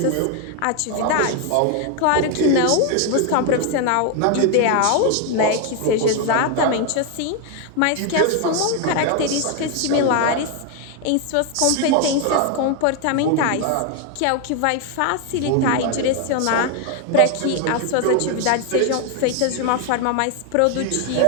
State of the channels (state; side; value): different; both; correlation 0.01